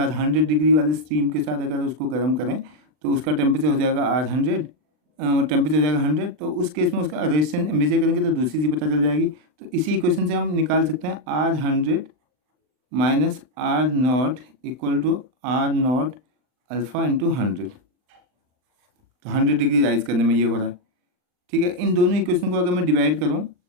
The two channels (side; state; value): left; late; 39 ms